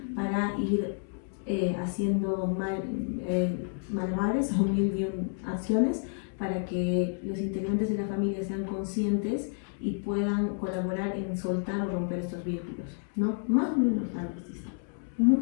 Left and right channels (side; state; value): right; silent; 58 dB below the other